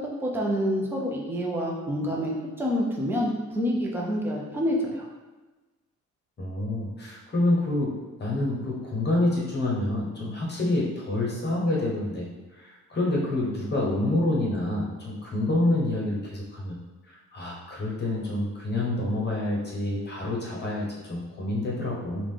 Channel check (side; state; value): both; normal; correlation 0.63